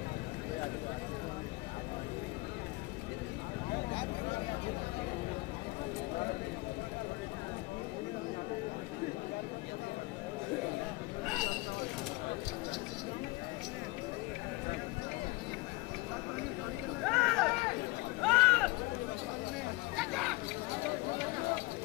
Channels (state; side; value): quieter; right; 23.3 dB